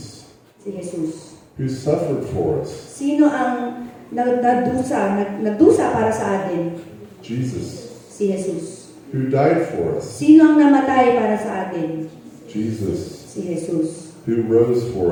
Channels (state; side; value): identical; both; correlation 1.00